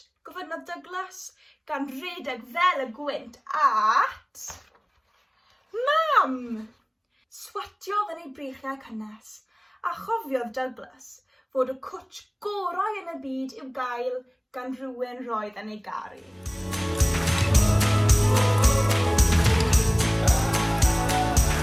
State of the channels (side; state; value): both; identical; correlation 1.00